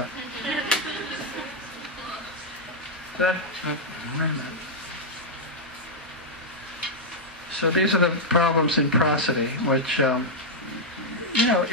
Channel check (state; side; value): normal; both; correlation -0.04